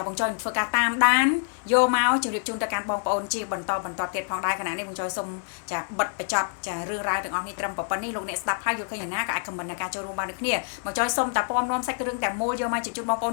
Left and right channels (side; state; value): right; silent; 61 dB below the other